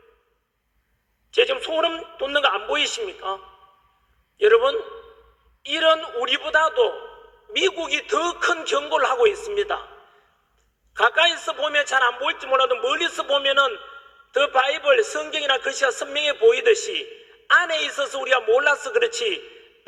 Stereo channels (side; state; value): both; identical; correlation 1.00